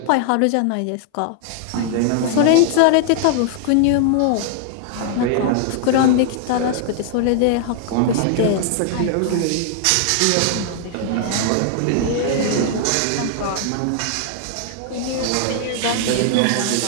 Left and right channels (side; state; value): both; different; correlation -0.01